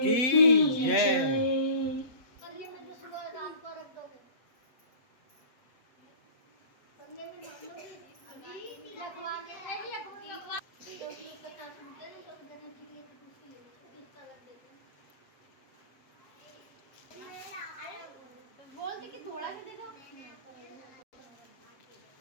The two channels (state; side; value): late; right; 7.8 ms